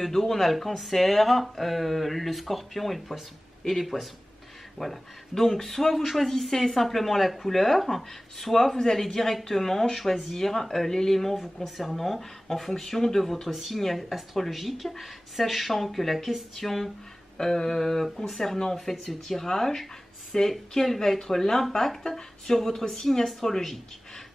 d'eau, on a le Cancer, le Scorpion et le Poisson, et les Poissons. Voilà, donc soit vous choisissez simplement la couleur, soit vous allez directement choisir l'élément vous concernant en fonction de votre signe astrologique, sachant que la question concernant en fait ce tirage, c'est quel va être l'impact sur votre signe astrologique.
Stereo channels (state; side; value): normal; both; correlation 0.98